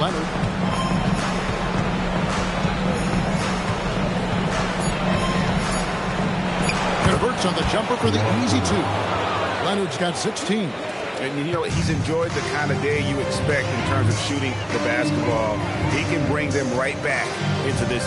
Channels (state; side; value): identical; both; correlation 1.00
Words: Converts on the jumper for the easy 2. Leonard's got 16. And, you know, he's enjoyed the kind of day you expect in terms of shooting the basketball. He can bring them right back into this